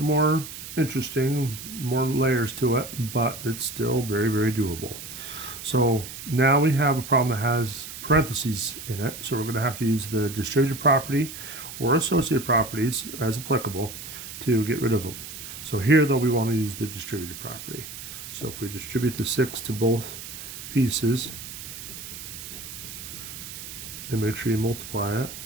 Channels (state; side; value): noise; right; hiss, 11 dB below the sound